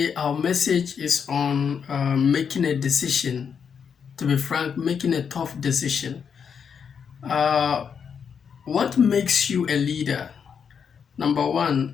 our message is on making a decision. To be frank, making a tough decision. Uh, what makes you a leader? Number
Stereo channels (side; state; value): right; quieter; 6.9 dB